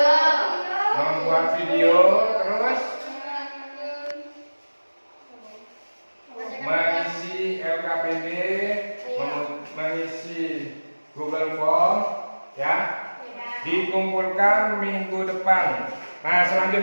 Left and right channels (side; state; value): both; inverted; correlation -1.00